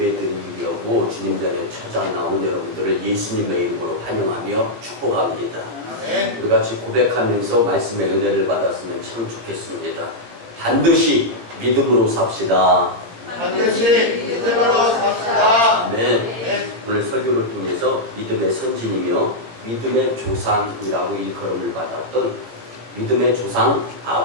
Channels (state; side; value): late; left; 17 ms